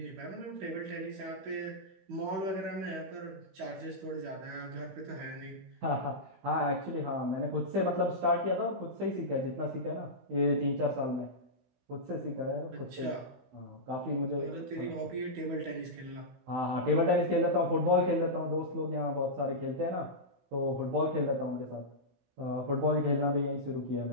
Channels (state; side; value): late; left; 16 ms